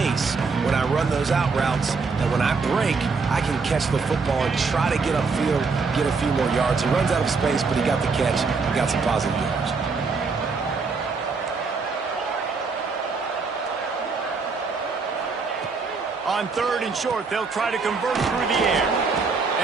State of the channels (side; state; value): left; quieter; 4.6 dB